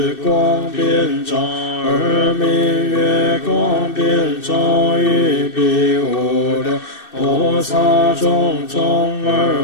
光遍照，二名月光遍照，于彼无量菩萨种种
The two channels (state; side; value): late; right; 2.6 ms